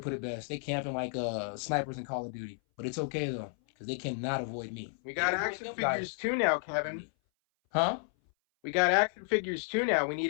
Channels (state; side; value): silent; right; 56 dB below the other